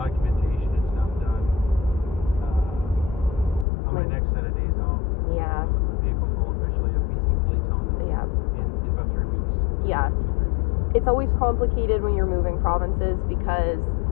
and stuff done. So my next set of days off. Yeah. The vehicles will officially have BC plates on them. Yeah. In about 3 weeks. Yeah. 2-3 weeks. It's always complicated when you're moving provinces because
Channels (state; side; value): drops out; right; at 3.7 s